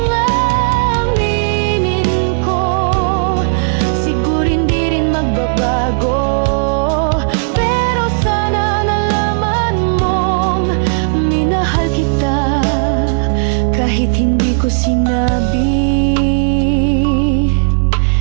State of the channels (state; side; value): silent; left; digital silence